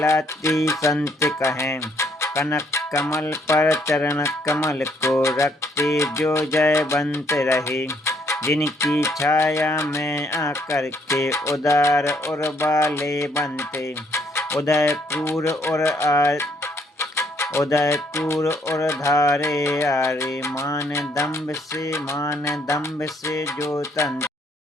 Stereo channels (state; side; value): normal; both; correlation 0.68